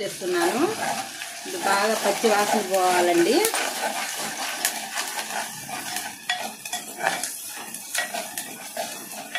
వేస్తున్నాను. ఇది బాగా పచ్చి వాసన పోవాలండి.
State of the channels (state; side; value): identical; both; correlation 1.00